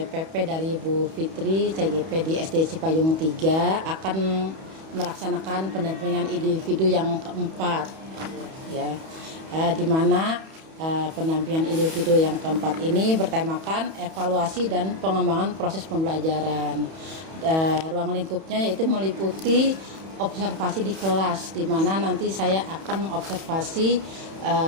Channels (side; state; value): left; late; 31 ms